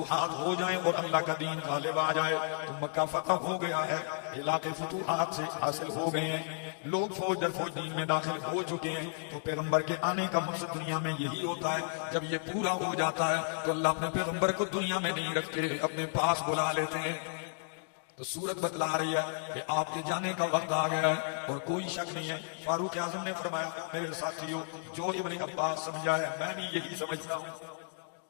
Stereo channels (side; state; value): right; silent; digital silence